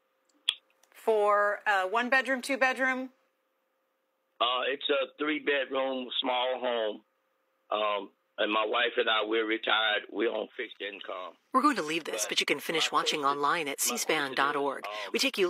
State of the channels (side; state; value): both; identical; correlation 1.00